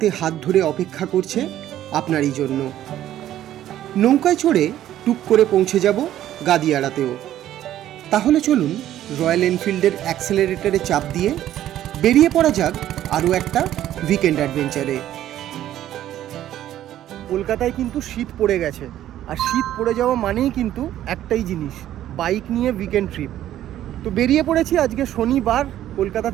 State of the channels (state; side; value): quieter; left; 12.4 dB